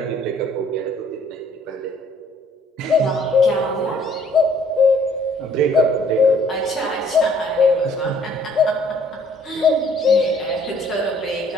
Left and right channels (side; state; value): both; normal; correlation 0.60